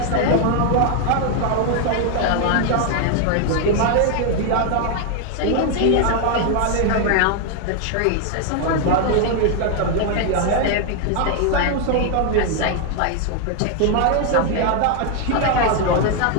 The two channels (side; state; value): both; different; correlation 0.01